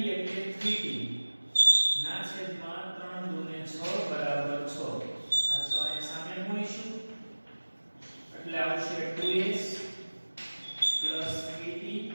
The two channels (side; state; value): both; inverted; correlation -1.00